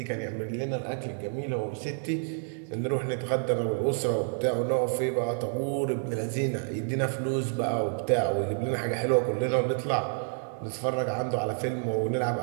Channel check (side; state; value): left; silent; 59 dB below the other